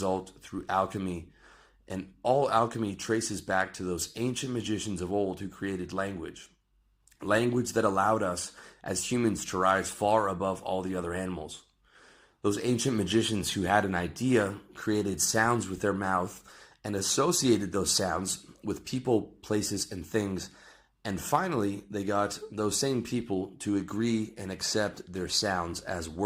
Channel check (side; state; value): both; identical; correlation 1.00